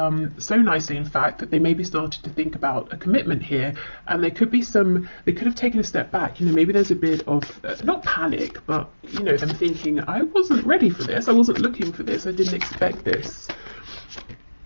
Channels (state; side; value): inverted; both; correlation -1.00